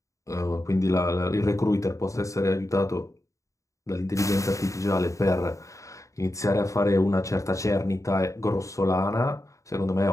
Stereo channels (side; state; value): right; late; 0.15 ms